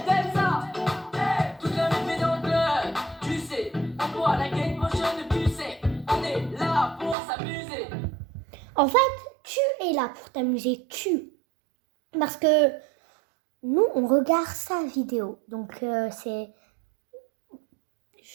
comme ça. Toute la nuit dans le club, tu sais. On boit la game motion, tu sais. On est là pour s'amuser. En fait, tu es là pour t'amuser, Parce que nous, on regarde sa vidéo. Donc, c'est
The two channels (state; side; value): drops out; left; at 7.2 s